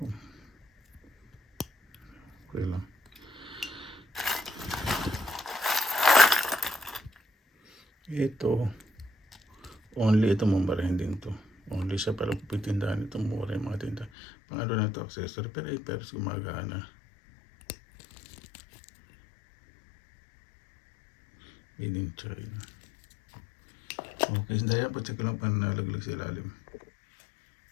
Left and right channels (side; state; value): right; drops out; at 14.1 s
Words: Okay lang. Ito, only ito mumurahin din to. Only siya para pupuntindahan ito mura yung mga tinda. Pang-ano na ito, accessory. Pero ay, pero gumagana. Made in China. Okay, dahil po check ko lang pa nalaglag sa ilalim.